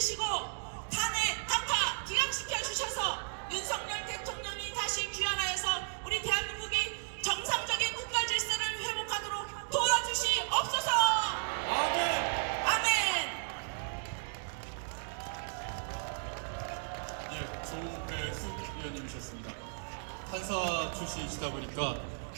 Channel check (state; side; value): silent; left; digital silence